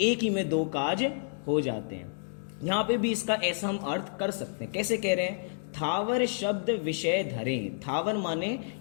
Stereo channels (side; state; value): right; silent; digital silence